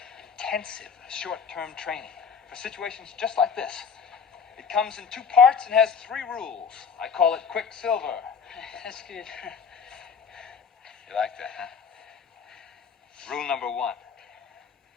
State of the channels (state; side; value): quieter; right; 6.3 dB